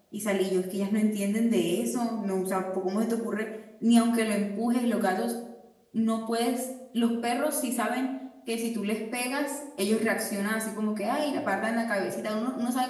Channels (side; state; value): both; identical; correlation 1.00